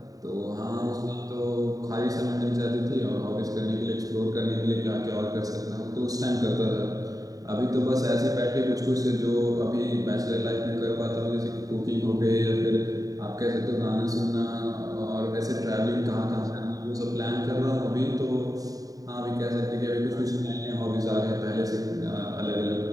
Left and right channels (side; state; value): left; late; 0.18 ms